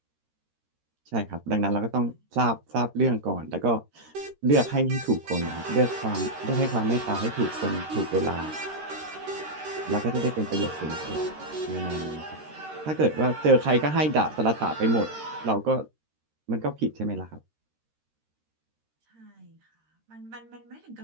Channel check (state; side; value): late; left; 13 ms